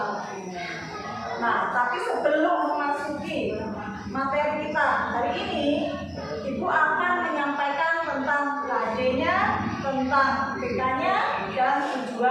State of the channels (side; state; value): both; identical; correlation 1.00